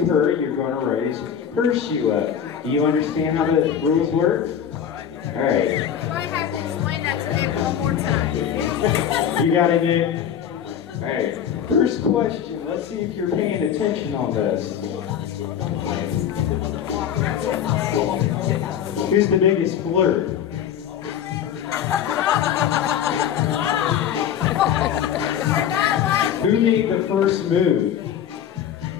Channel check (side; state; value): right; quieter; 9.1 dB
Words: her, you're going to raise her shoe up. Do you understand how the rules work? Alright. So I have to explain that to Nick one more time. You got it, Nick? Alright. First question. Let's see if you're paying attention on this. Who's the biggest flirt? Who made the first move?